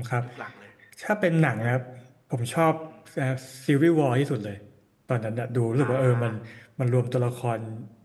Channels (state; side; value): identical; both; correlation 1.00